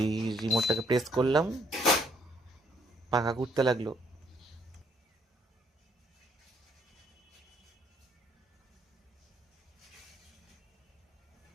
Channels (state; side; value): normal; both; correlation 0.68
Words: এই রিমোটটাকে প্রেস করলাম, পাখা ঘুরতে লাগলো।